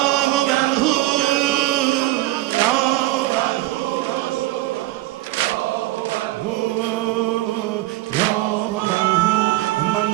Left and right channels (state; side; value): quieter; left; 17.5 dB